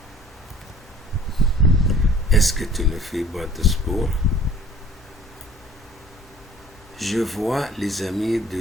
Est-ce que tu ne fais pas de sport? Je vois les amis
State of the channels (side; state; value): both; normal; correlation 0.50